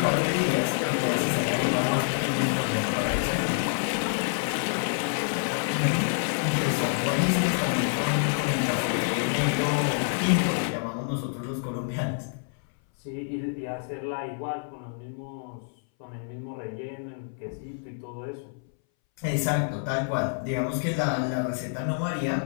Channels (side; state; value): right; silent; 60 dB below the other